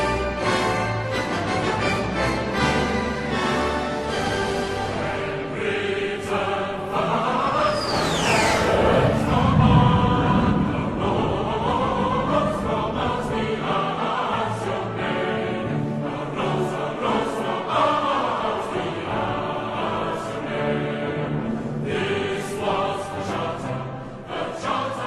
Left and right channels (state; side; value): identical; both; correlation 1.00